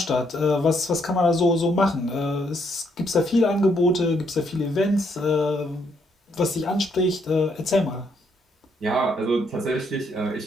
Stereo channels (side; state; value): both; normal; correlation 0.73